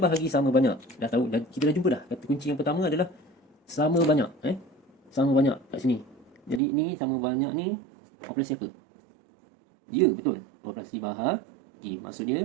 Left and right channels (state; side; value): drops out; left; at 6.6 s